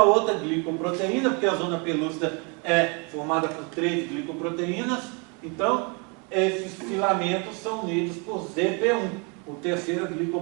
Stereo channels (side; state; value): left; quieter; 32.9 dB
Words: outra glicoproteína, porque a zona pelúcida é formada por 3 glicoproteínas. Então, esses filamentos são unidos por ZP1, a terceira